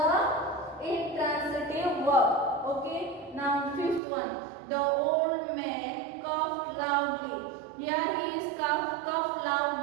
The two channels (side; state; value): left; drops out; at 4.0 s